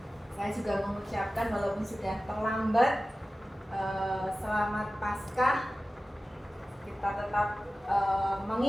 saya juga mengucapkan walaupun sudah terlambat, selamat Paskah. Kita tetap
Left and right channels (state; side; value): normal; both; correlation 0.96